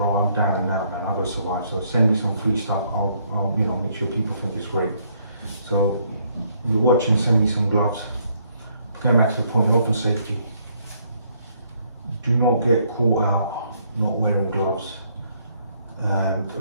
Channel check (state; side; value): inverted; both; correlation -0.68